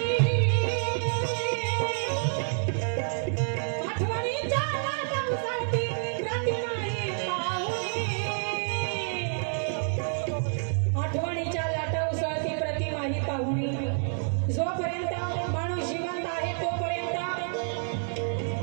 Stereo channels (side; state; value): left; silent; 59 dB below the other